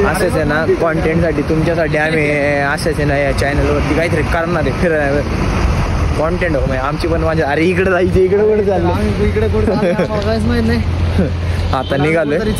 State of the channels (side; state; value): both; identical; correlation 1.00